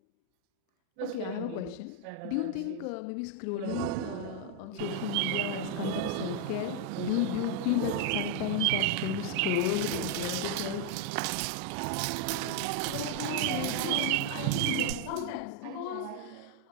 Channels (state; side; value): different; both; correlation 0.00